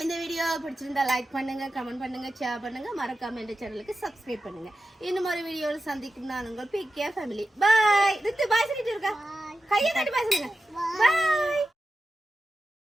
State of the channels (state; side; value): normal; both; correlation 0.91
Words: இந்த வீடியோ பிடிச்சிருந்தா லைக் பண்ணுங்க, கமெண்ட் பண்ணுங்க, ஷேர் பண்ணுங்க. மறக்காம இந்த சேனலுக்கு சப்ஸ்கிரைப் பண்ணுங்க. இன்னும் ஒரு வீடியோவில் சந்திக்கும் நான் உங்கள் பிகே ஃபேமிலி. பாய். ரித்து பாய் சொல்லிட்டு இருக்கா? கையை தட்டி பாய் சொல்லுங்க. பாய்.